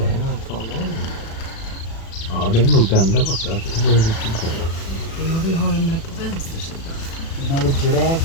Ja, det är nog den där borta. Det är riktigt bra. Ja, vi har den där på vänster sida. You know,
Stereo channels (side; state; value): right; late; 36 ms